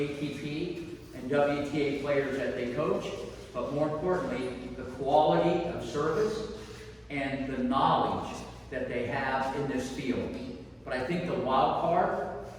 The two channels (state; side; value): identical; both; correlation 1.00